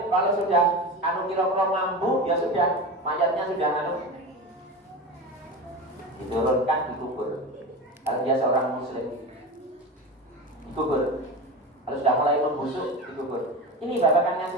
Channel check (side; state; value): both; normal; correlation 0.26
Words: kalau sudah kira-kira mampu, ya sudah, mayatnya sudah diturunkan, dikubur. Kalau dia seorang muslim, dikubur. Kalau sudah mulai membusuk dikubur. Ini babakan